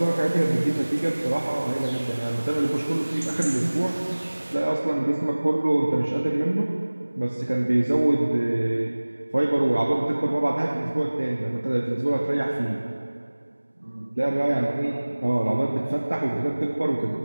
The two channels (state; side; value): inverted; both; correlation -1.00